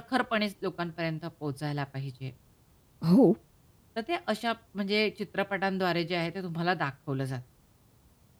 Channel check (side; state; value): both; identical; correlation 1.00